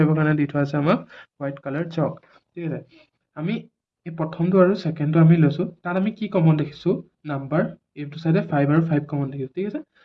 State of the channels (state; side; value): identical; both; correlation 1.00